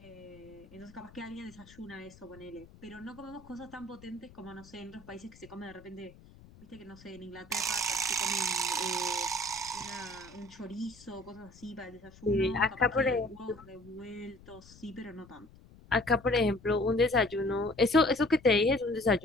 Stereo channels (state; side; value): noise; left; rumble, 22 dB below the sound